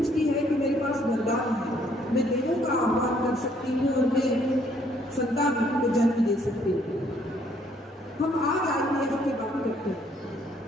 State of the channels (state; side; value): normal; both; correlation 0.66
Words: है कि मेरे पास वरदान है, मैं देवों का आह्वान कर सकती हूँ और मैं संतान को जन्म दे सकती हूँ। हम आज IVF की बात करते हैं,